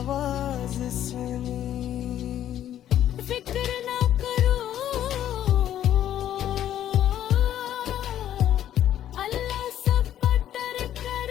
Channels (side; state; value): right; quieter; 11.4 dB